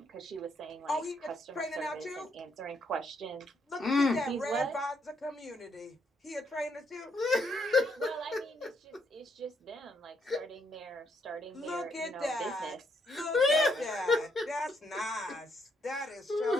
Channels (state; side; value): normal; both; correlation 0.74